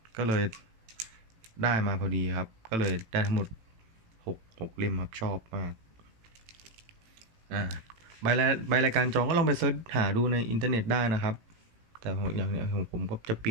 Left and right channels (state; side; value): late; left; 18 ms